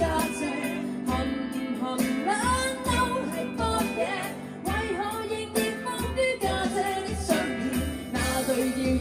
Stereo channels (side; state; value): both; identical; correlation 1.00